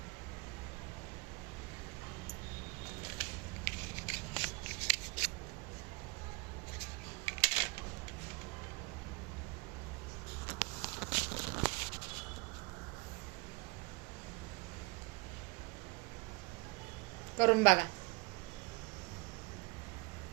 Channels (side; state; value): left; quieter; 28.1 dB